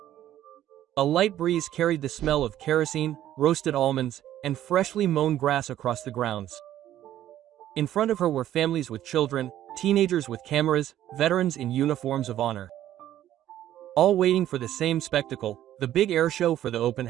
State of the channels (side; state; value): left; quieter; 12.4 dB